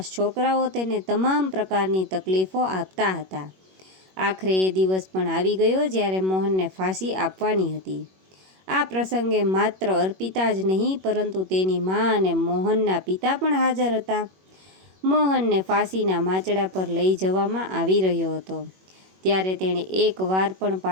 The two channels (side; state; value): left; late; 21 ms